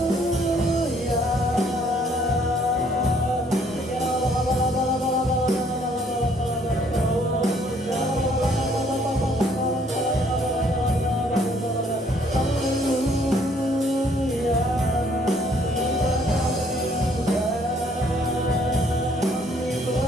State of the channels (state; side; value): normal; both; correlation 0.64